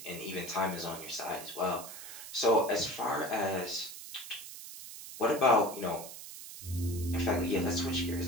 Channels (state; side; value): noise; right; hiss, 12 dB below the sound